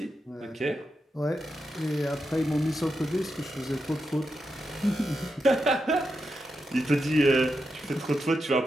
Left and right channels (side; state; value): both; normal; correlation 0.87